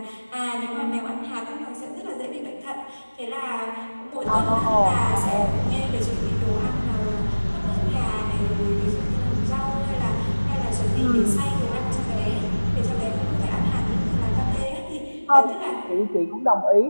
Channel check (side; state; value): both; inverted; correlation -1.00